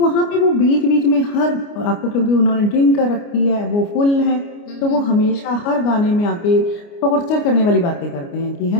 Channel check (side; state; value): right; late; 29 ms